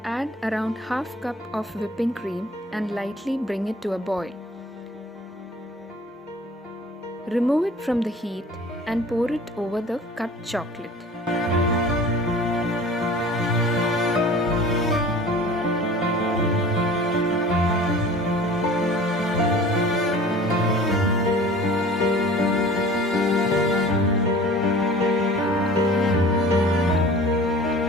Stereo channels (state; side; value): normal; both; correlation 0.44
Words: add around half cup of whipping cream and lightly bring it to a boil. Remove it from the heat and pour it over the cut chocolate.